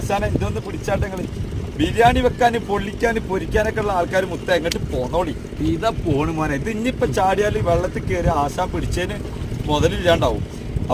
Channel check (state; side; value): identical; both; correlation 1.00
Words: ഇതൊന്ന് പിടിച്ചാട്ടങ്ങള് ബിരിയാണി വെക്കാന് പൊള്ളിക്കാന് പൊരിക്കാനൊക്കെ ഉള്ള ആൾക്കാർ മുത്ത എങ്ങോട്ട് പോന്നോളി. ഇതാ പോണ് മോനെ. ഇത് ഇനിയിപ്പൊ ചാടിയാല് വെള്ളത്തിൽ കയറി ആശാൻ പിടിച്ചതിന് മുതലില്ലാണ്ടാവും.